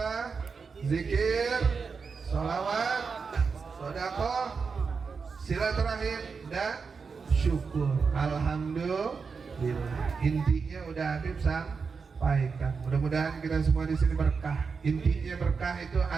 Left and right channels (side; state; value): left; quieter; 5.2 dB